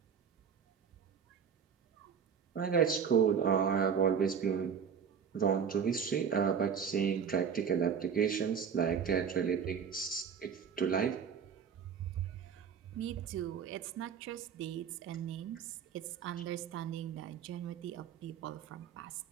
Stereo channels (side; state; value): left; quieter; 7.0 dB